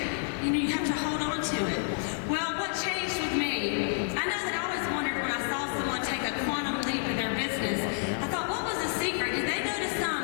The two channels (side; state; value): right; silent; 58 dB below the other